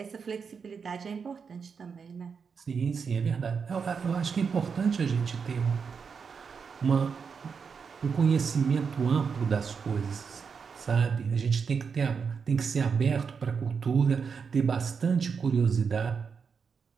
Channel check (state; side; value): quieter; left; 5.9 dB